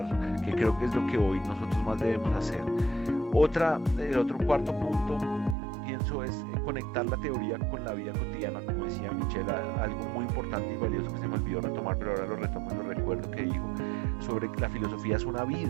que creo que es lo que hoy nosotros más debemos hacer. El otro cuarto punto, pienso, es conectar la teoría con la vida cotidiana, como decía Michelle, algo muy importante y valioso que se me olvidó retomar, pero ahora lo retomo y lo recuerdo, que dijo sobre que la filosofía es una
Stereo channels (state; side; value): drops out; left; at 5.6 s